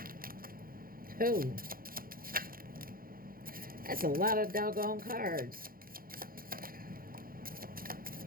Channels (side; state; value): left; late; 0.42 ms